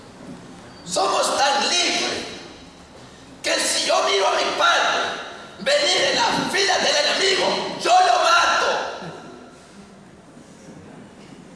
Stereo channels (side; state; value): both; identical; correlation 1.00